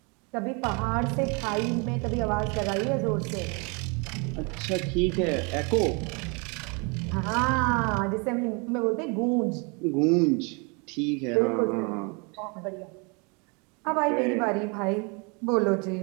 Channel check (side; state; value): left; quieter; 31.9 dB